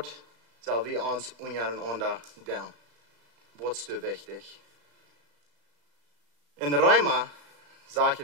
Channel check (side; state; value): left; late; 34 ms